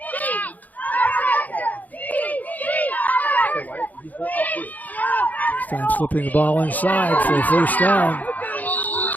This time slipping the ball inside for a 1st down.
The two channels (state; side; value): late; right; 0.080 ms